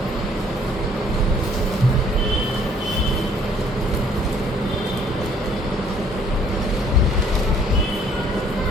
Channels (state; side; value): normal; both; correlation 0.60